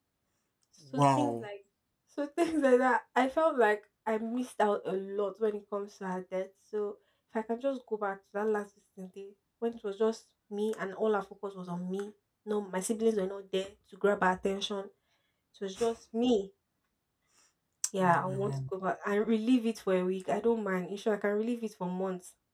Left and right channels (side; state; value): both; identical; correlation 1.00